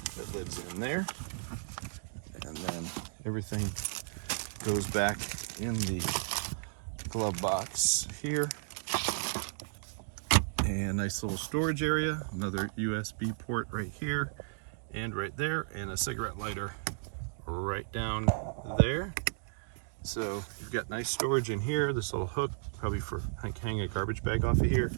that lives in there. And then everything goes back in the glove box here. And nice little storage area, another USB port right here. and right there, and a cigarette lighter right down there. So you've got nice storage in here. This little hook, probably for hang a garbage bag off of here.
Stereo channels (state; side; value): silent; left; digital silence